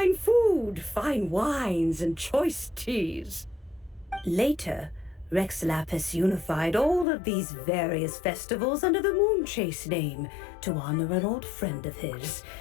food, fine wines, and choice teas. Later, Rex Lapis unified all of these various festivals under the Moon Chase name to honor an old friend of his.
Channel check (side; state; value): right; drops out; at 7.1 s